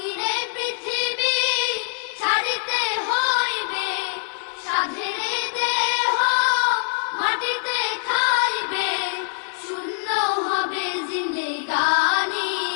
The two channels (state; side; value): silent; right; 63 dB below the other